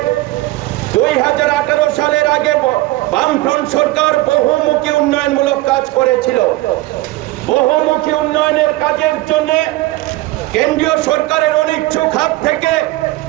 2018 সালের আগে বামফ্রন্ট সরকার বহুমুখী উন্নয়নমূলক কাজ করেছিল। বহুমুখী উন্নয়নের কাজের জন্য কেন্দ্রীয় সরকারের অনিচ্ছুক হাত থেকে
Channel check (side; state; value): left; quieter; 19.0 dB